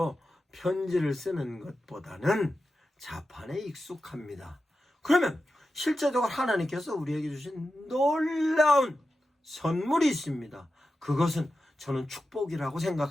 편지를 쓰는 것보다는 자판에 익숙합니다. 그러면 실제적으로 하나님께서 우리에게 주신 놀라운 선물이 있습니다. 그것은 저는 축복이라고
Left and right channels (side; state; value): both; normal; correlation 0.91